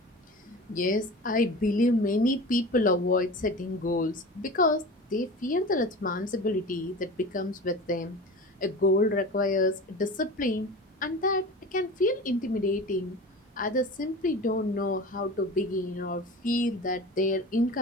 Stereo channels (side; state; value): both; normal; correlation 0.35